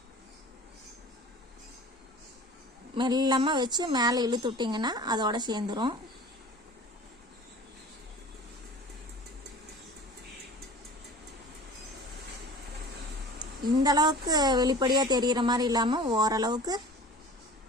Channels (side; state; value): both; normal; correlation 0.41